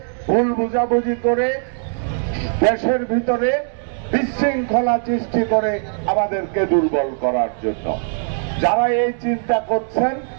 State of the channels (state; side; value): silent; left; digital silence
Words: ভুল বুঝাবুঝি করে, দেশের ভিতরে বিশৃঙ্খলা সৃষ্টি করে আমাদেরকে দুর্বল করার জন্য। যারা এই চিন্তা করছেন